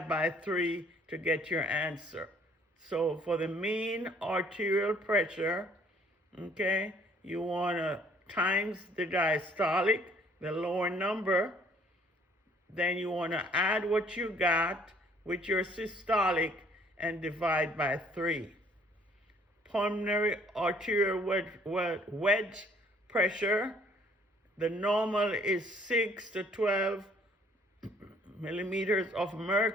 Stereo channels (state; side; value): normal; both; correlation 0.60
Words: by 3 to get your answer. So for the mean arterial pressure, okay, you want to times the diastolic, the lower number, Then you want to add what you got with your systolic and divide by 3. Pulmonary arterial wedge pressure, the normal is 6 to 12 millimeters of